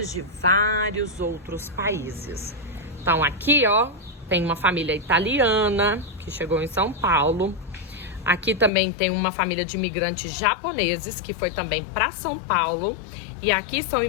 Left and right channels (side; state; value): right; drops out; at 8.7 s